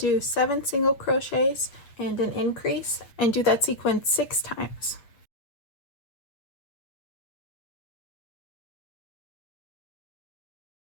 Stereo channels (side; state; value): right; late; 8.3 ms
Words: 7 single crochets and an increase, and do that sequence 6 times.